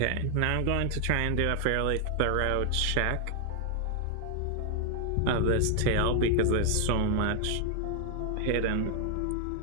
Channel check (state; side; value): different; both; correlation 0.00